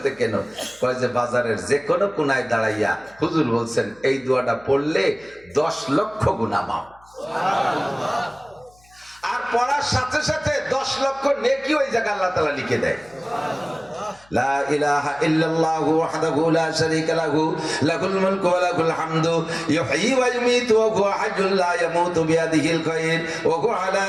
থেকে কেন? কয় যে বাজারের যে কোনো কোনায় দাঁড়াইয়া হুজুর বলছেন এই দোয়াটা পড়লে 10 লক্ষ গুনাহ মাফ, আর পড়ার সাথে সাথে 10 লক্ষ নেকি ওই জায়গা আল্লাহ তাআলা লিখে দেয়। লা ইলাহা ইল্লাল্লাহু ওয়াহদাহু লা শারীকা লাহু, লাহুল মুলকু ওয়া লাহুল হামদু, ইউহয়ী ওয়া ইউমীতু ওয়া হুয়া হাইয়্যুন লা ইয়ামুতু বিয়াদিহিল খায়র ওয়া হুয়া আলা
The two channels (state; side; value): noise; left; hum, 29 dB below the sound